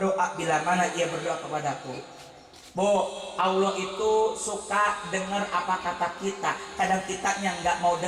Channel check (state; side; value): identical; both; correlation 1.00